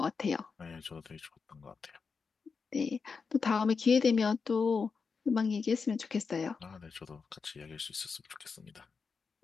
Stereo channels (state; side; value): quieter; right; 5.2 dB